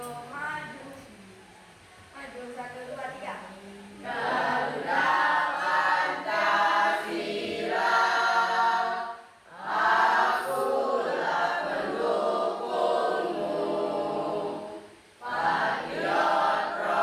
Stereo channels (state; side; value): identical; both; correlation 1.00